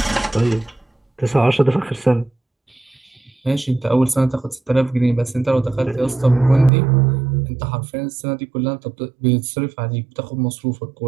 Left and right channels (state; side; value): drops out; left; at 6.7 s